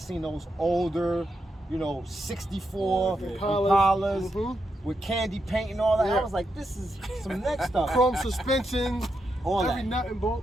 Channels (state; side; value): normal; both; correlation 0.83